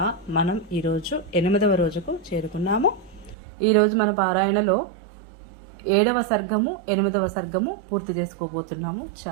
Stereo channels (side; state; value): left; drops out; at 3.4 s